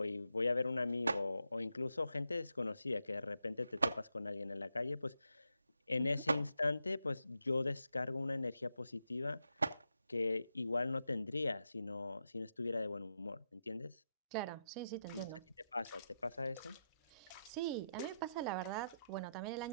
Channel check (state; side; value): inverted; both; correlation -0.85